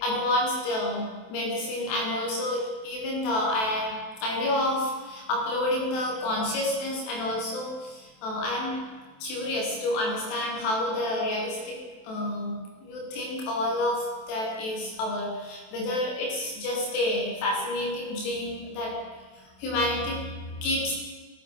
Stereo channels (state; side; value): late; right; 27 ms